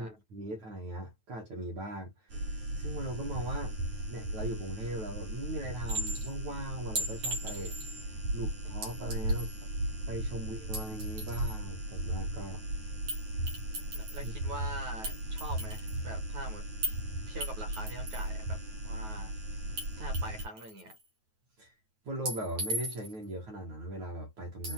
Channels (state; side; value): late; left; 9.3 ms